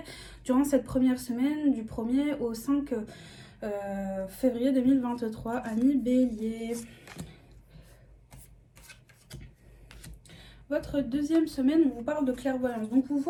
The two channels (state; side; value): identical; both; correlation 1.00